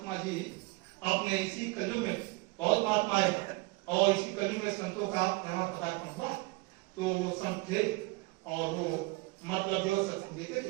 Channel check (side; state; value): left; quieter; 24.6 dB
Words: जी अपने इसी कलयुग में बहुत महात्मा है, और इसी कलयुग में संतों का यहाँ पदार्पण हुआ। तो वो संत थे, और वो मतलब जो सत्संग देते